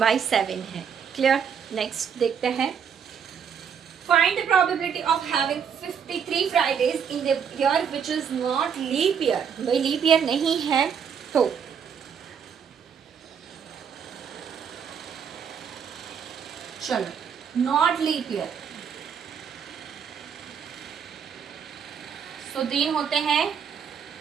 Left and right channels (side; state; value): left; quieter; 7.3 dB